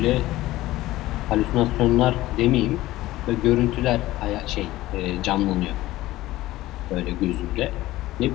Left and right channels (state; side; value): quieter; right; 16.7 dB